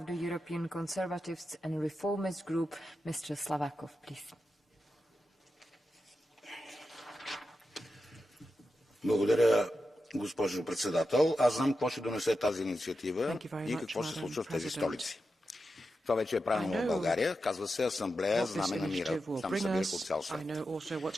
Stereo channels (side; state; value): both; normal; correlation 0.89